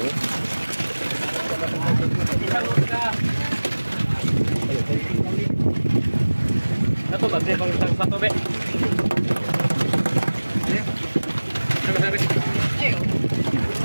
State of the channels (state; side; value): inverted; both; correlation -1.00